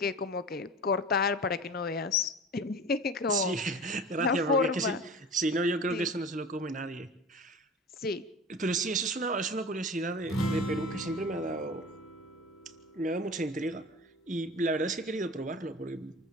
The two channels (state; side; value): normal; both; correlation 0.36